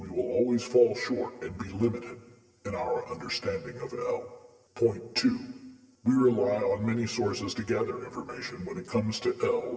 will always fall short and be limited in our understanding of El. Point 2. We rely on many sources to gather information when it comes to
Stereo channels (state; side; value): identical; both; correlation 1.00